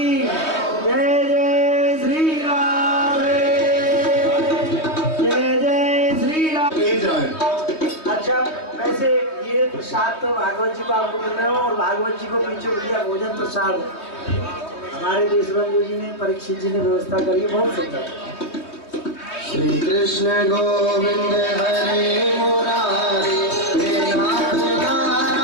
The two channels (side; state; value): right; late; 3.2 ms